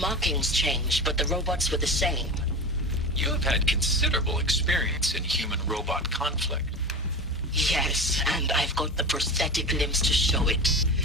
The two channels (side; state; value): both; normal; correlation 0.28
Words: changed, but the robots were the same. You have had considerable experience in human-robot conflict. Yes, and I've got the prosthetic limbs to show it.